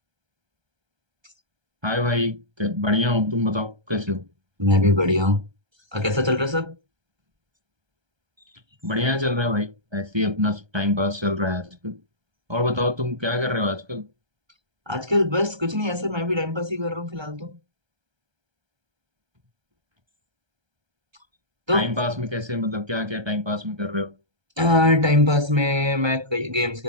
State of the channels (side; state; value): left; late; 1.3 ms